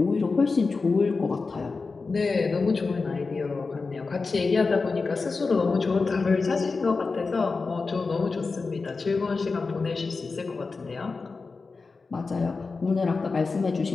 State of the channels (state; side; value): quieter; right; 4.2 dB